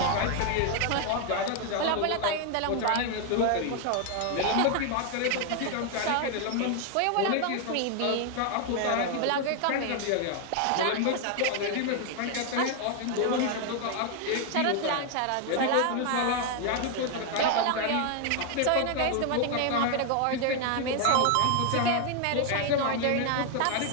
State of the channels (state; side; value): different; both; correlation 0.00